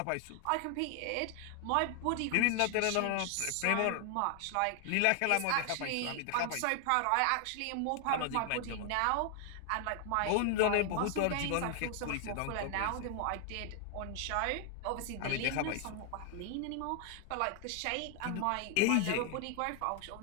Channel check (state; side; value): different; both; correlation 0.00